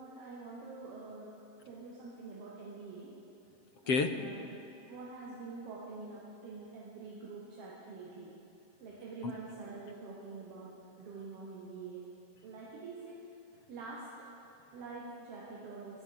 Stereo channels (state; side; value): late; right; 7.5 ms